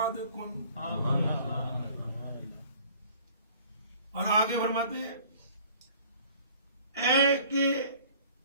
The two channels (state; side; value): inverted; both; correlation -0.52